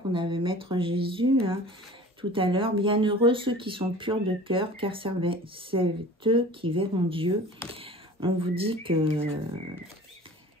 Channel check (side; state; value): both; normal; correlation 0.42